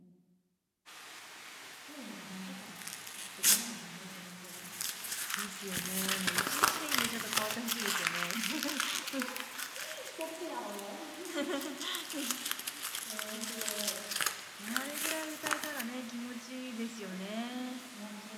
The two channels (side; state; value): both; identical; correlation 1.00